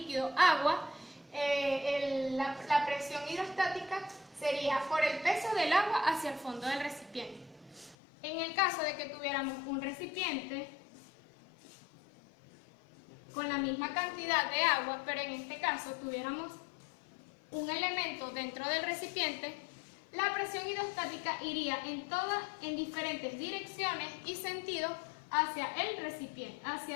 agua, la presión hidrostática sería por el peso del agua hacia el fondo del recipiente. En el caso de que tuviéramos un recipiente con la misma cantidad de agua, pero en este caso tuviéramos un elemento dentro del recipiente, la presión hidrostática iría en diferentes direcciones y sentidos hacia el recipiente,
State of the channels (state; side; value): drops out; right; at 8.0 s